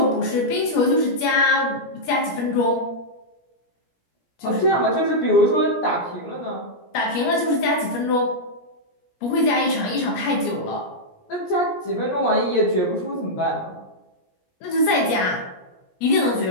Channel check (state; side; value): late; right; 17 ms